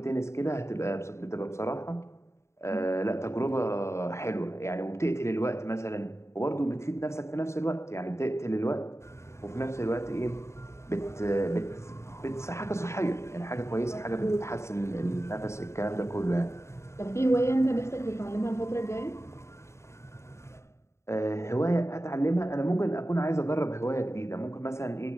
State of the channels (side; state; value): right; late; 0.13 ms